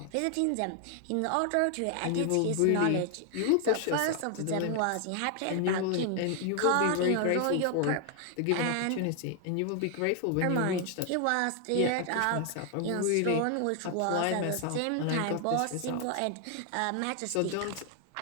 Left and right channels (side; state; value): both; different; correlation 0.00